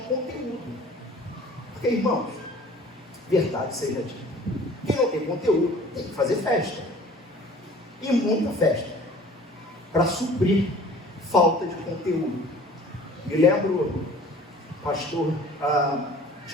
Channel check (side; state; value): both; normal; correlation 0.48